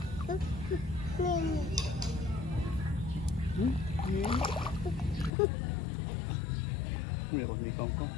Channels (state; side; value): drops out; right; at 5.3 s